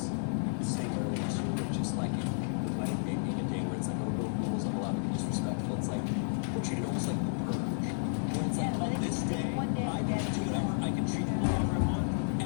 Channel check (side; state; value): right; silent; 56 dB below the other